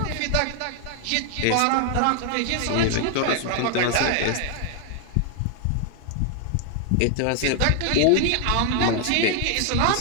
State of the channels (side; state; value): both; different; correlation 0.00